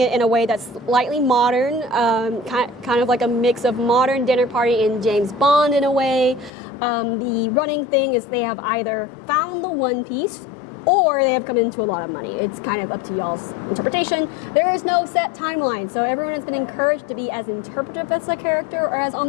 in a way that's slightly modern, kind of like a mix of modern dinner party and James Bond in a way. The running thing is they have either found the One Piece or they have come into a lot of money. It's kind of up to y'all's interpretation. There is no set timeline, so everyone has been encouraged to be as interpretive as a character or as on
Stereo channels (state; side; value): drops out; right; at 6.5 s